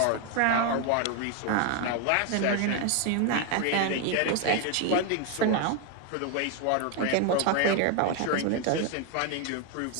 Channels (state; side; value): different; both; correlation 0.01